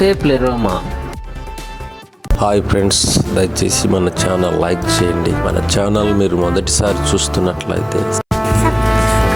Hi friends, దయచేసి మన channel like చేయండి. మన ఛానల్ మీరు మొదటిసారి చూస్తున్నట్లయితే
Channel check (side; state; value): both; identical; correlation 1.00